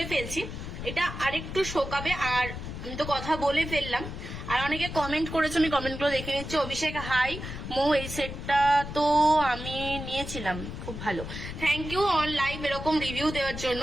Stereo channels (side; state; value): left; noise; rumble, 8 dB below the sound